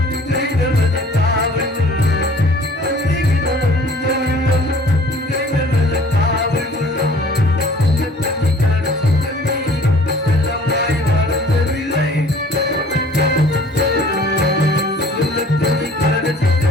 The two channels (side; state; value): both; normal; correlation 0.51